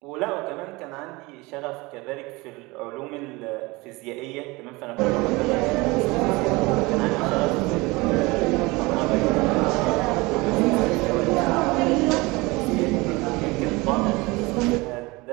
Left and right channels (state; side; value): quieter; left; 23.5 dB